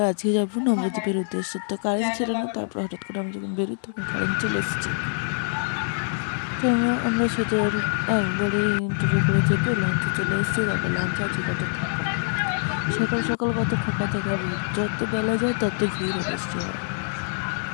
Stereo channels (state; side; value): silent; right; digital silence